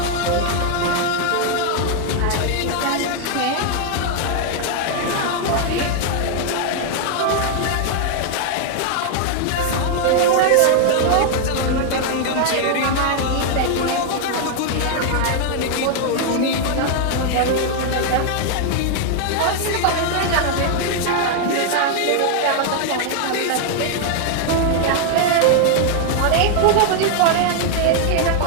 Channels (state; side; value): different; both; correlation 0.00